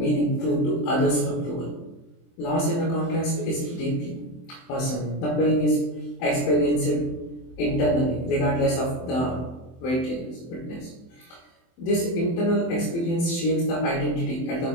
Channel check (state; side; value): late; right; 23 ms